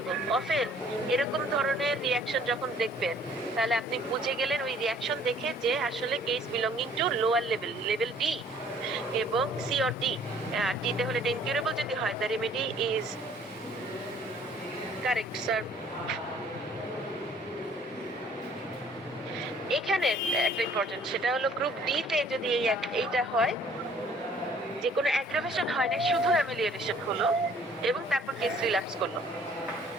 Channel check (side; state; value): both; normal; correlation 0.57